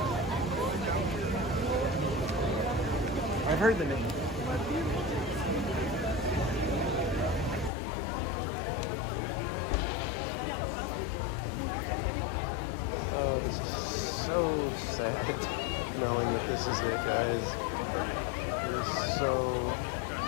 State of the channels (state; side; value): drops out; right; at 7.7 s